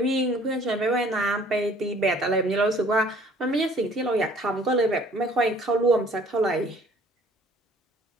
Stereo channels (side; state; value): both; normal; correlation 0.55